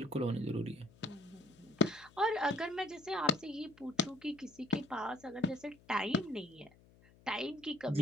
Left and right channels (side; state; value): left; noise; hum, 26 dB below the sound